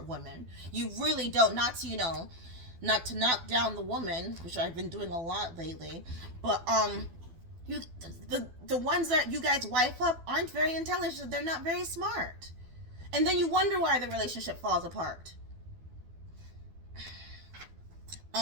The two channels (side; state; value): left; late; 12 ms